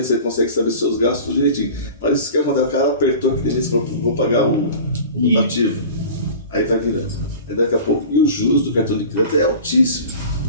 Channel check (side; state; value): both; inverted; correlation -0.38